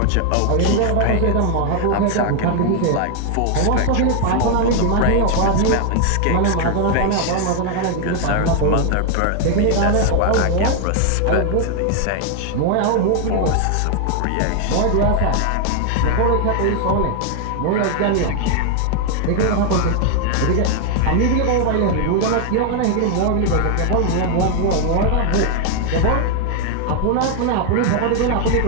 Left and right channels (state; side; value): different; both; correlation 0.00